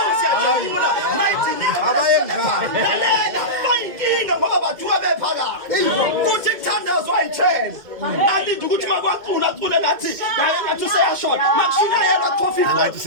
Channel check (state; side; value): late; left; 2.2 ms